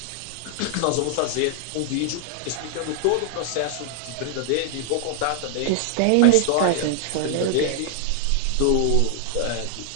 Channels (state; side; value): different; both; correlation 0.00